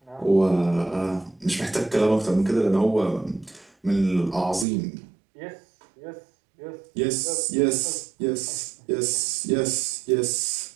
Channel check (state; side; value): drops out; left; at 4.7 s